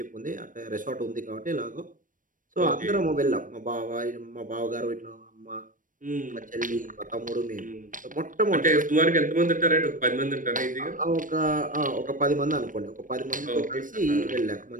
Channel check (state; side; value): late; left; 0.38 ms